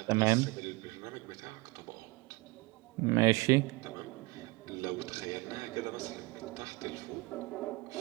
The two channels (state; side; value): quieter; left; 23.8 dB